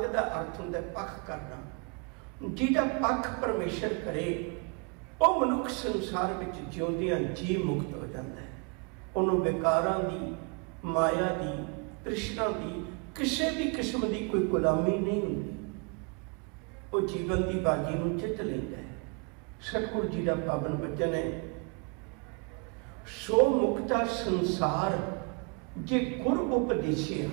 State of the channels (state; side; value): quieter; left; 33.7 dB